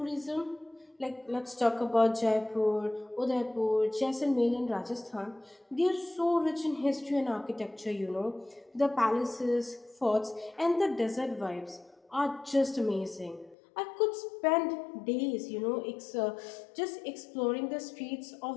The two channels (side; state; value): right; drops out; at 13.6 s